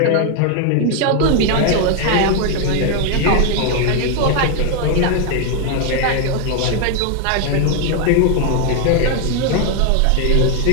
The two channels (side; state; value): both; different; correlation 0.01